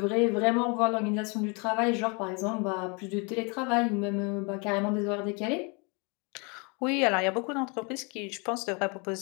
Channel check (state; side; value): quieter; right; 32.4 dB